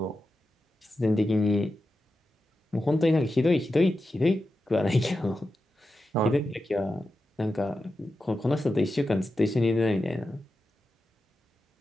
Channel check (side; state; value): both; normal; correlation 0.90